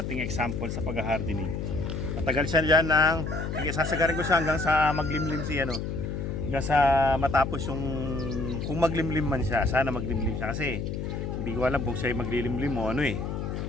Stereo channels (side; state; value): left; noise; hum, 4 dB below the sound